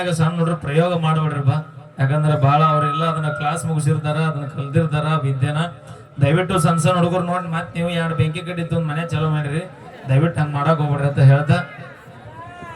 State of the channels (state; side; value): identical; both; correlation 1.00